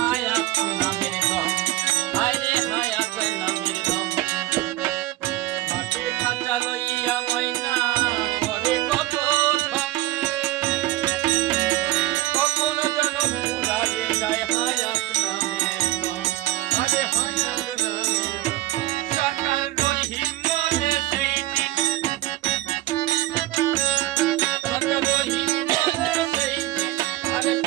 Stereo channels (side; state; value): left; quieter; 16.3 dB